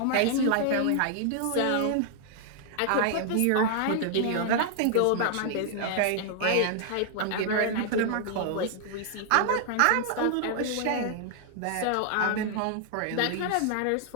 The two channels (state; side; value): different; both; correlation 0.00